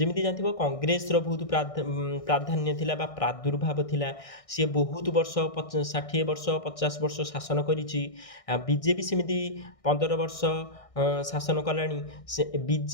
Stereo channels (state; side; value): late; right; 1.6 ms